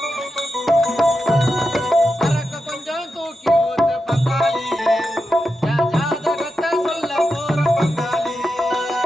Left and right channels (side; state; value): both; normal; correlation 0.89